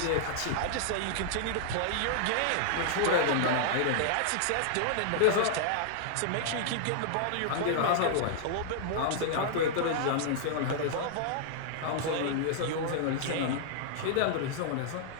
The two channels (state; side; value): different; both; correlation -0.01